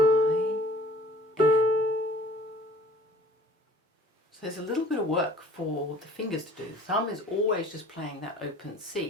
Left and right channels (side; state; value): both; normal; correlation 0.50